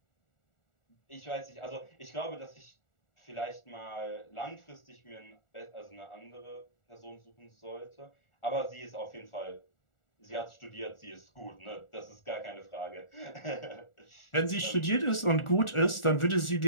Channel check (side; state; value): right; late; 1.4 ms